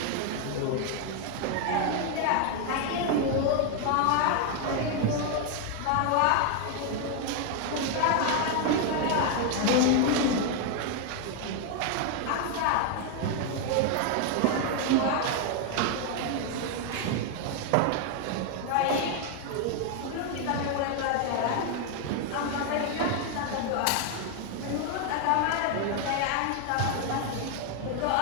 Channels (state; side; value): different; both; correlation 0.01